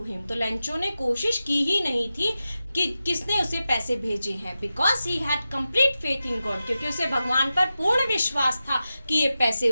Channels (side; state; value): both; inverted; correlation -0.92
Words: him. तो लेंचो ने कोशिश की ही नहीं थी कि किसने उसे पैसे भेजे हैं, because he had complete faith in God, क्योंकि उसे भगवान पर पूर्ण विश्वास था कि ये पैसे